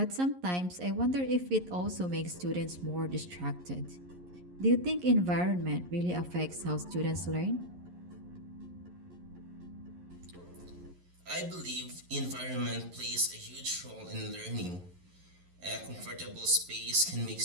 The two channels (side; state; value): left; late; 11 ms